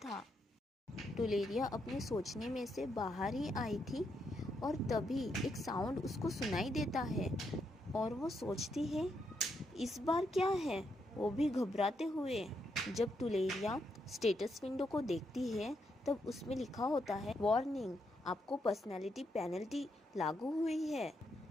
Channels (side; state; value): both; normal; correlation 0.79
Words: टुलेरिया अपने सोचने में से बाहर ही आई थी और तभी एक साउंड उसको सुनाई देता है और वो सोचती है इस बार क्या है, वो भी घबराते हुए। जब टुलेरिया स्टेटस विंडो को देखती है तब उसमें लिखा होता है, वार्निंग, आपको पर्सनैलिटी पेनल्टी लागू हुई है।